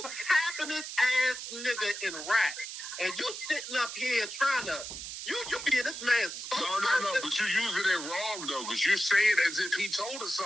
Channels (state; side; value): noise; right; hiss, 8 dB below the sound